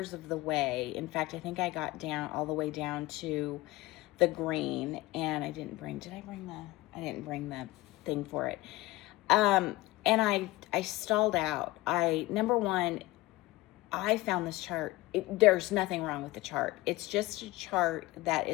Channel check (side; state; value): right; quieter; 19.4 dB